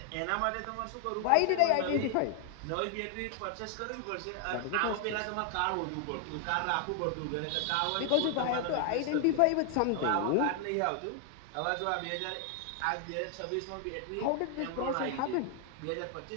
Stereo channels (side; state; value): both; different; correlation 0.00